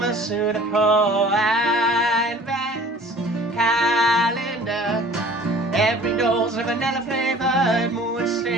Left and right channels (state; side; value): normal; both; correlation 0.48